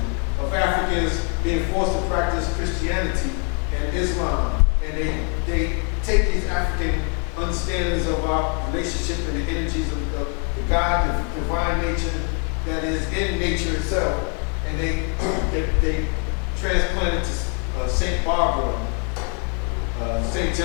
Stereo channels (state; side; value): quieter; right; 37.3 dB